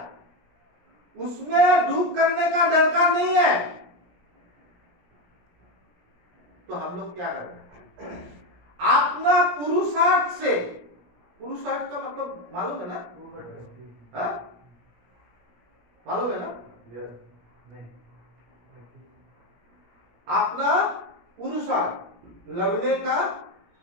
उसमें दुख करने का दरकार नहीं है। तो हम लोग क्या कर रहे हैं? अपना पुरुषार्थ से, पुरुषार्थ का मतलब मालूम है ना? हाँ? मालूम है ना? नहीं, अपना पुरुषार्थ, लड़ने का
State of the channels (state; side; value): late; left; 17 ms